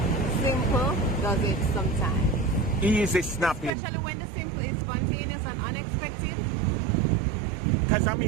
Simple does it sometimes. Easy snapping. Especially when the simple is spontaneous and unexpected. Because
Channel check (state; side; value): drops out; left; at 3.7 s